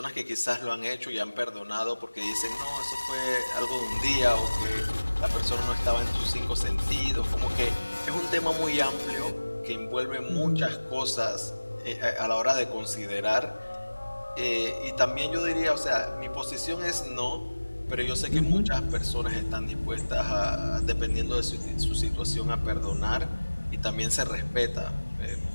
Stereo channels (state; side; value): inverted; both; correlation -1.00